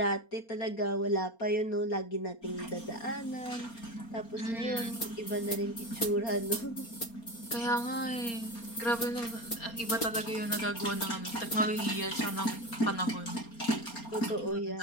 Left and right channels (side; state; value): right; late; 4.3 ms